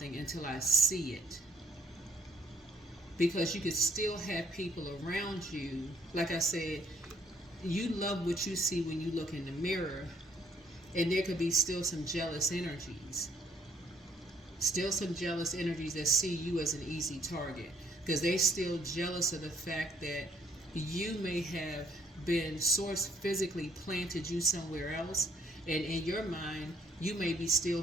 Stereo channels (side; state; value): both; normal; correlation 0.64